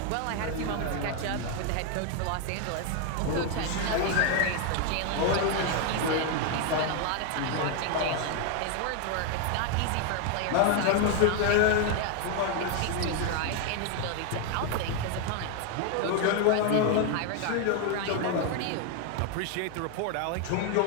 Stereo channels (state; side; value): different; both; correlation 0.01